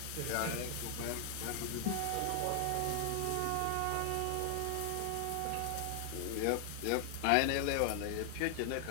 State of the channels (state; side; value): different; both; correlation 0.00